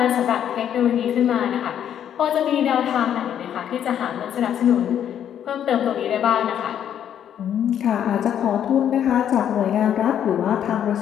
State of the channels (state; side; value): quieter; right; 9.7 dB